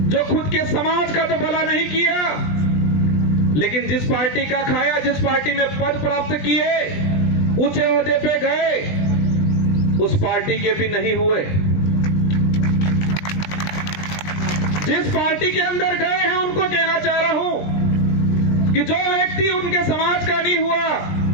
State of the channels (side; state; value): right; late; 20 ms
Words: जो खुद के समाज का तो भला नहीं किया, लेकिन जिस पार्टी का खाया, जिस पार्टी में पद प्राप्त किए, ऊंचे ओहदे पे गए, उस पार्टी के भी नहीं हुए। जिस पार्टी के अंदर गए हैं उनको कहना चाह रहा हूं कि जो व्यक्ति उनके समाज का नहीं हुआ,